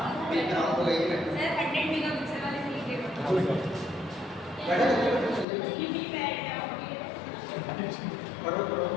मैं कराऊं तो यही बैठो सर। 100 मेगापिक्सल वाले से लीजिए, बैठो पढ़ो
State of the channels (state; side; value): drops out; right; at 5.5 s